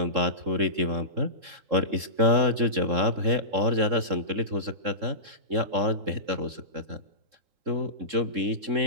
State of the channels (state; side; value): late; left; 3.7 ms